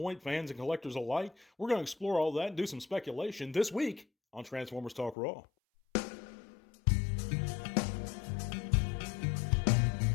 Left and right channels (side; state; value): right; drops out; at 5.2 s